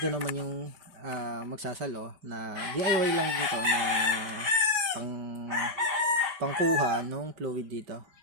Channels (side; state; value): left; late; 5.1 ms